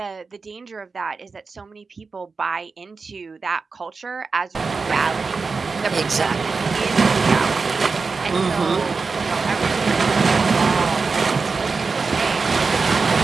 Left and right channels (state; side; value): quieter; left; 4.5 dB